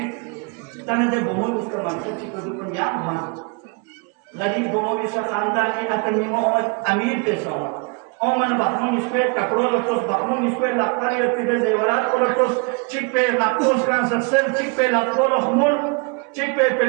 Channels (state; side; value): quieter; left; 32.2 dB